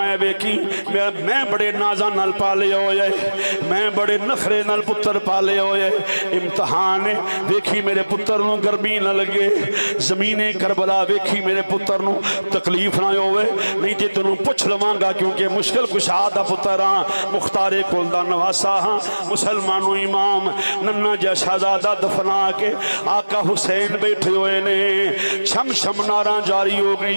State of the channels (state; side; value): inverted; both; correlation -1.00